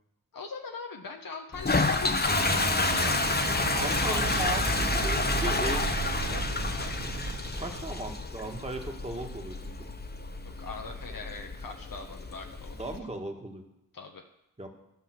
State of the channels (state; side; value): normal; both; correlation 0.15